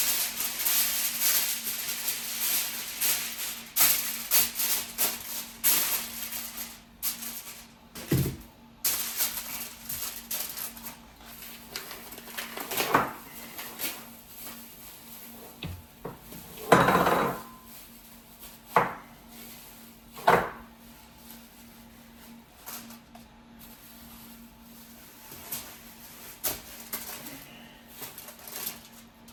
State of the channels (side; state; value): both; identical; correlation 1.00